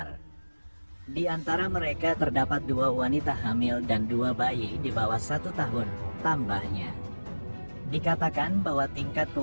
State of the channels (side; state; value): both; inverted; correlation -1.00